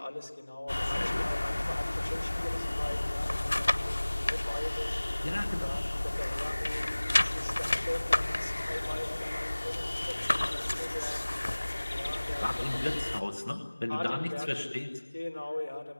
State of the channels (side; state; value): both; inverted; correlation -1.00